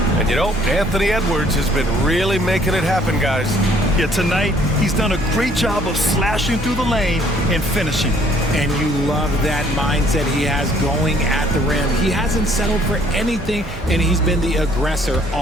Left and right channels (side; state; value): both; normal; correlation 0.61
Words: And you know, Anthony Edwards has been really making it happen, guys. Yeah, tonight he's done a great job of slashing through the lane and finishing. And you love that mindset he has going at the rim. He hasn't settled for anything, and he's been the aggressor